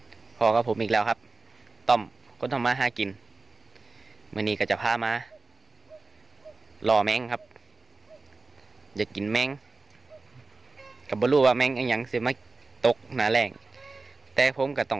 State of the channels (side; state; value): left; quieter; 3.7 dB